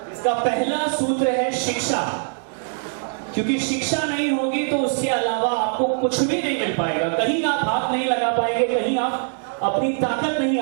इसका पहला सूत्र है शिक्षा, क्योंकि शिक्षा नहीं होगी तो उसके अलावा आपको कुछ भी नहीं मिल पाएगा। कहीं आप हाथ नहीं लगा पाएंगे, कहीं आप अपनी ताकत नहीं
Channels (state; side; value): silent; left; digital silence